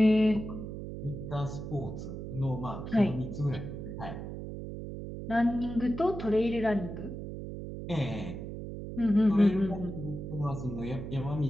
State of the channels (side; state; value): right; noise; hum, 8 dB below the sound